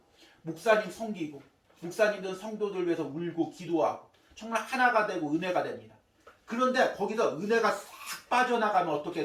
목사님 섬기고 목사님들은 성도들 위해서 울고 기도하고 정말 하나가 되고 은혜가 됩니다. 그런데 거기서 은혜가 싹 빠져나가면 어떻게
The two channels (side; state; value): both; identical; correlation 1.00